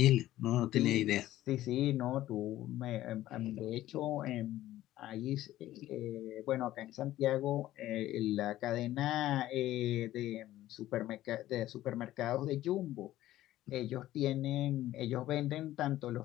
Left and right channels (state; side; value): quieter; right; 14.5 dB